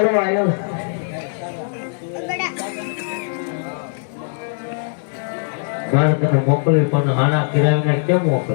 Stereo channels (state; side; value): silent; right; digital silence